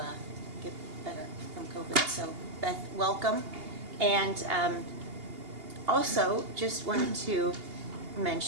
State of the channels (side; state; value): left; late; 2.8 ms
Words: get better from COVID. So, Beth, welcome. And also, just wanted to